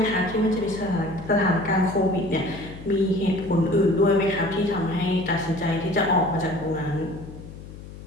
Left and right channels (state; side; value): noise; left; hum, 15 dB below the sound